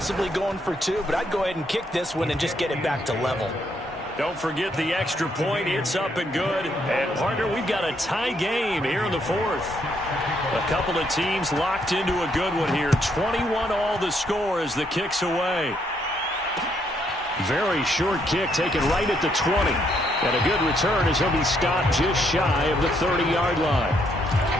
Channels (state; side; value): normal; both; correlation 0.73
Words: going for 2, but I'd go ahead and kick this one and just get it back to level. Don't forget the extra point. It's up and good. And, partner, we've got a tie game here in the 4th. A couple of teams locked into a good one here. 21 all the score as the kick's away. Very short kick taken right at the 20. And a good return as he'll be stopped just shy of the 30-yard line.